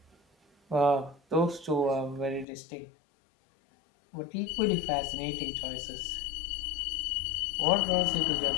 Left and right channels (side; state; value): right; drops out; at 2.5 s